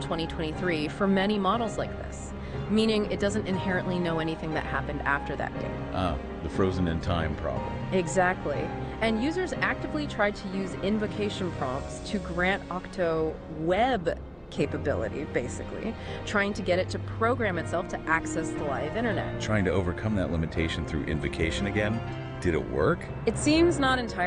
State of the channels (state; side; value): identical; both; correlation 1.00